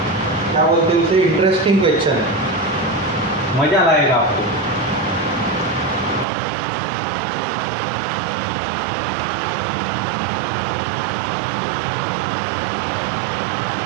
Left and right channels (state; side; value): drops out; left; at 6.2 s